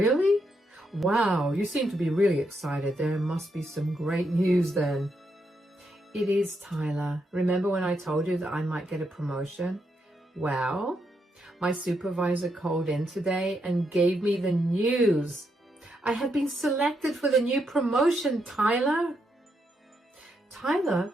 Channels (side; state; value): both; normal; correlation 0.80